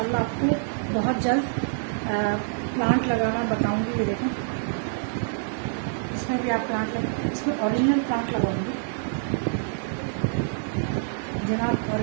आपको बहुत जल्द प्लांट लगाना बताऊंगी। ये देखें, इसमें भी आप प्लांट लगा, इसमें ओरिजिनल प्लांट लगाऊंगी जनाब,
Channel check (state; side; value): silent; left; digital silence